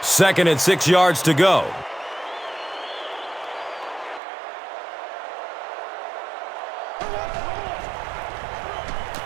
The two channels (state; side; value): drops out; left; at 4.2 s